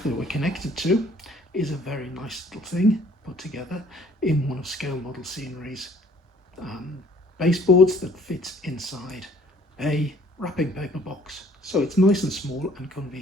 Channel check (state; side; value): normal; both; correlation 0.57